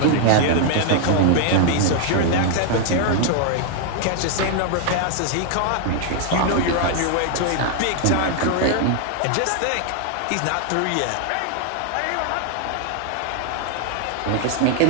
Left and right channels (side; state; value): both; different; correlation 0.00